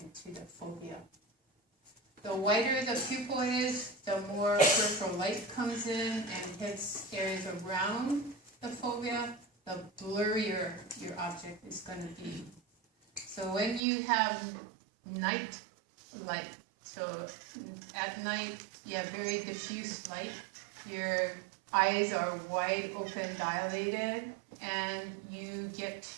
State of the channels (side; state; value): left; drops out; at 13.8 s